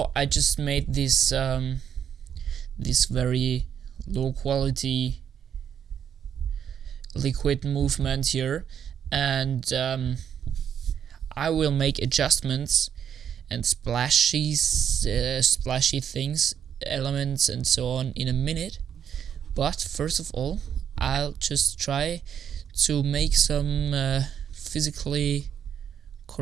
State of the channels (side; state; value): left; quieter; 8.6 dB